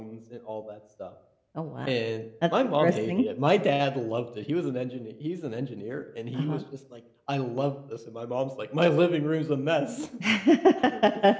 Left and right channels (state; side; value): identical; both; correlation 1.00